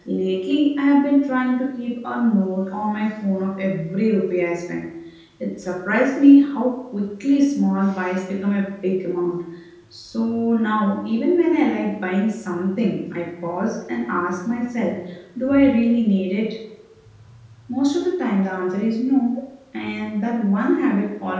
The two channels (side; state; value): both; identical; correlation 1.00